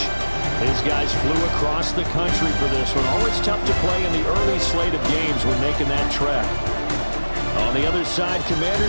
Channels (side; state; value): both; inverted; correlation -1.00